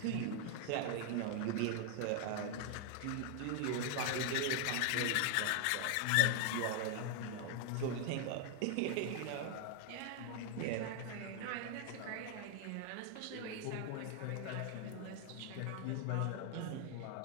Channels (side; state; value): both; different; correlation 0.00